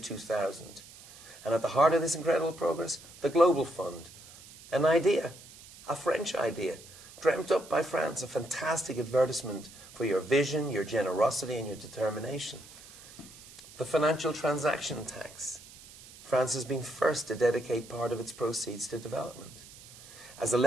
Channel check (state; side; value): noise; right; hiss, 19 dB below the sound